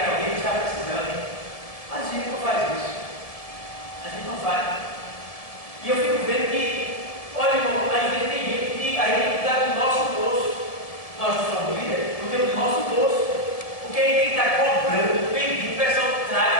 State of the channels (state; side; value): late; right; 1.8 ms